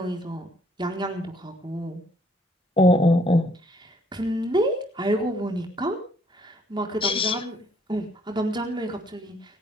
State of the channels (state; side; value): normal; both; correlation 0.65